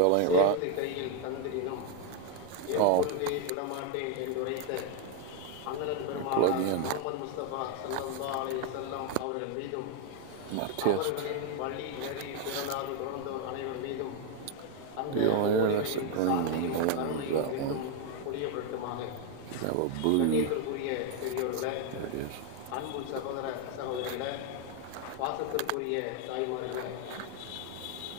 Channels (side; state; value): both; different; correlation 0.01